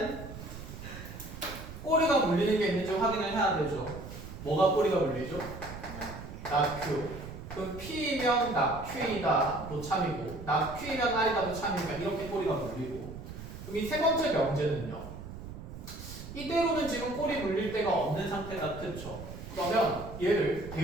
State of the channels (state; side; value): noise; right; rumble, 11 dB below the sound